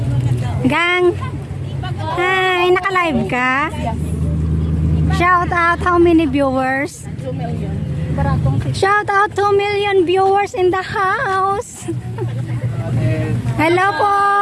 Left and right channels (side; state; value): both; identical; correlation 1.00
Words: Gang! Hi! Naka-live ka? Shout out how many viewers? 2 million. Shout out 2 million viewers in the house. Hello po.